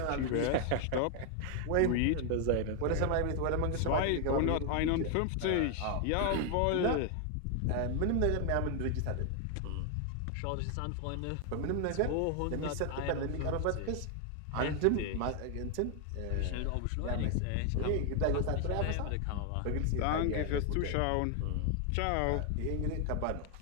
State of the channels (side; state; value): both; different; correlation 0.00